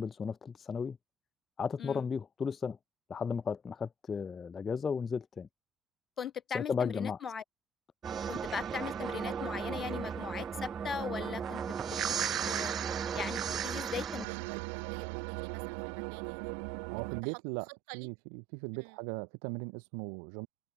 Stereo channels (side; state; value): left; drops out; at 14.2 s